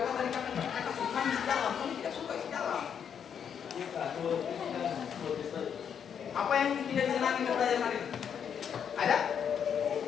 tadi kakak senang isi dalam, kamu tidak suka isi dalam. Apa yang tidak disenangi dari pelajaran hari ini? Ada?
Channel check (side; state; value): right; quieter; 7.9 dB